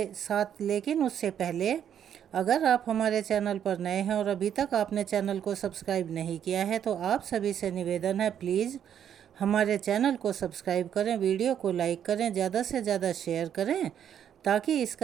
7। लेकिन उससे पहले अगर आप हमारे चैनल पर नए हैं और अभी तक आपने चैनल को सब्सक्राइब नहीं किया है तो आप सभी से निवेदन है, प्लीज़ हमारे चैनल को सब्सक्राइब करें, वीडियो को लाइक करें, ज़्यादा से ज़्यादा शेयर करें ताकि इस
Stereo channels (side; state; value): left; quieter; 9.2 dB